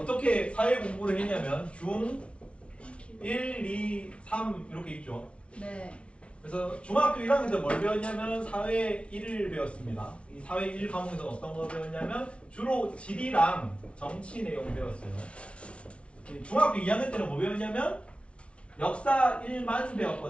사회 공부를 했냐면 중 1, 2, 3 이렇게 있죠. 네. 그래서 중학교 1학년 때 뭘 배웠냐면 사회 1을 배웠습니다. 이 사회 1 과목에서 어떤 거 배웠냐면 주로 지리랑 정치 내용 배웠어요. 중학교 2학년 때는 뭐 배웠냐면 역사 1만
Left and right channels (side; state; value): right; late; 0.060 ms